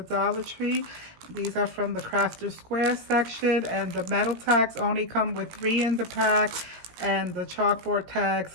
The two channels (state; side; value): late; left; 17 ms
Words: Dollar Tree. These are from the Crafter Square section, and the metal tags only come with 3 in the pack, and the chalkboard